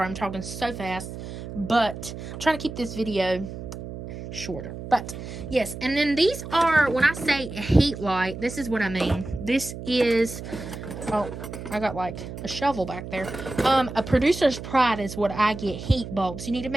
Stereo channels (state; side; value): noise; right; hum, 10 dB below the sound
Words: I'm talking so fast, but I'm trying to keep this video shorter. But yes, and then these are, when I say a heat light, this is what I mean. This is, oh, I got like a shovel back there. A producer's pride is what I get, heat bulbs. You need to